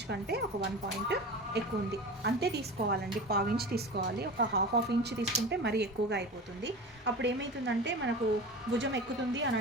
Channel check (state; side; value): normal; both; correlation 0.32